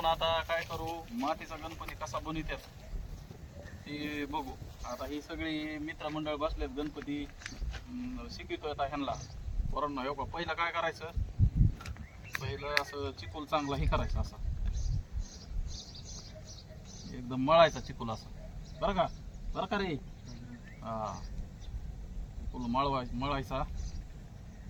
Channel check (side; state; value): both; identical; correlation 1.00